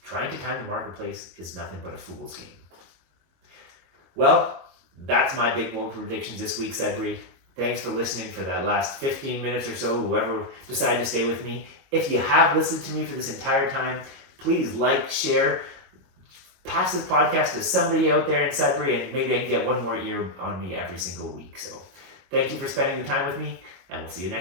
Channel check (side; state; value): left; late; 22 ms